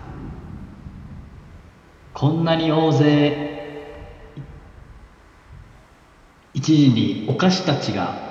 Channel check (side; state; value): both; identical; correlation 1.00